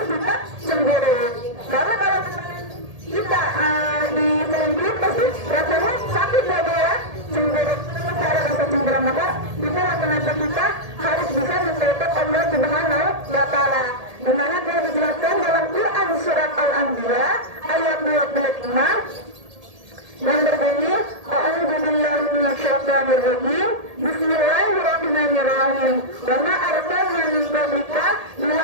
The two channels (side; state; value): left; late; 1.8 ms